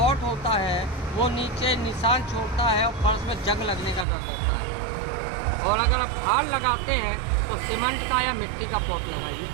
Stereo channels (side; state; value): left; drops out; at 4.0 s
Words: होता है वो नीचे निशान छोड़ता है और फर्श में जंग लगने का डर रहता है। और अगर आप हार लगाते हैं तो सीमेंट का या मिट्टी का पॉट लगाइए।